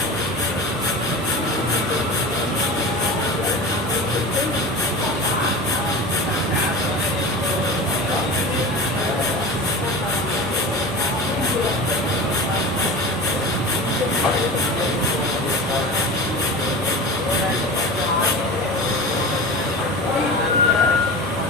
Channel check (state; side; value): normal; both; correlation 0.32